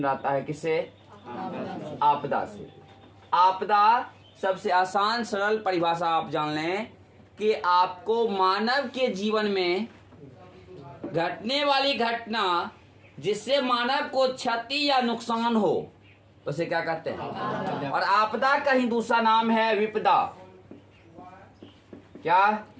रहता है। किससे? आपदा से। आपदा सबसे आसान सरल परिभाषा आप जान लें कि आपको मानव के जीवन में घटने वाली घटना जिससे मानव को क्षति या नुकसान हो उसे क्या कहते हैं। और आपदा का ही दूसरा नाम है विपदा। क्या?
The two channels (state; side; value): identical; both; correlation 1.00